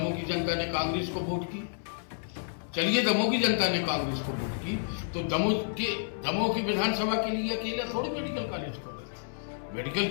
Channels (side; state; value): right; silent; 58 dB below the other